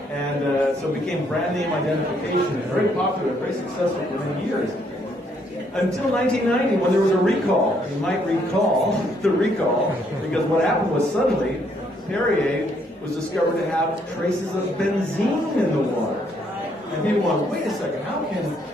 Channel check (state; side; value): normal; both; correlation 0.70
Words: And so it became brand name identification, very popular, very successful for many years. Until 1990, when there was a recall. You might recall the recall, because what happened was suddenly Perrier was discovered to have traces of benzene in the water. And people went, wait a second, how can